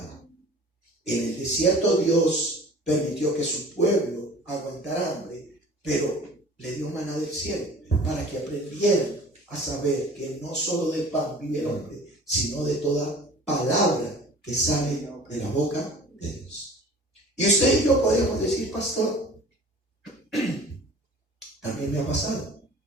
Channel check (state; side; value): normal; both; correlation 0.45